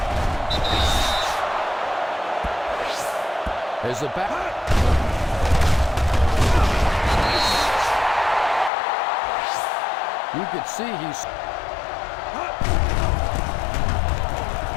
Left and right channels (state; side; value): drops out; right; at 8.7 s